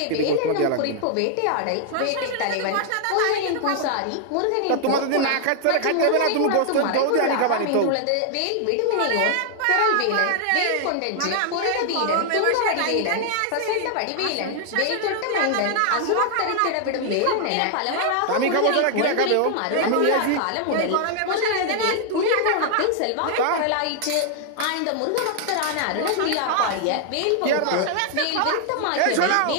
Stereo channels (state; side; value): different; both; correlation 0.00